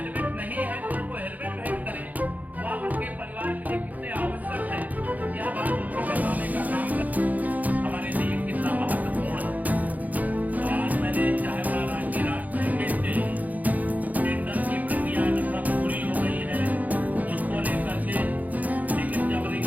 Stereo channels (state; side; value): late; left; 0.079 ms